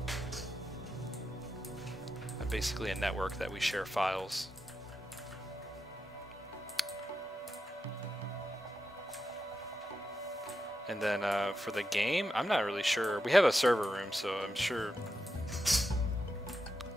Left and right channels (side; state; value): both; normal; correlation 0.87